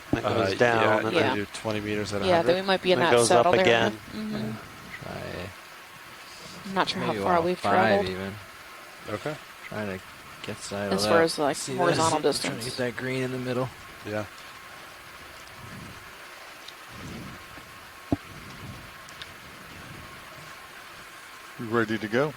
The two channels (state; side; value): identical; both; correlation 1.00